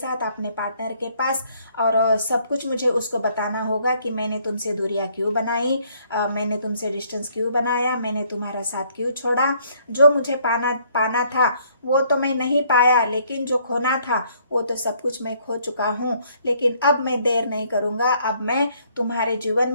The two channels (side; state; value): both; inverted; correlation -0.65